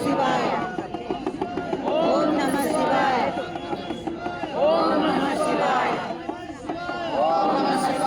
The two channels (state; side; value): identical; both; correlation 1.00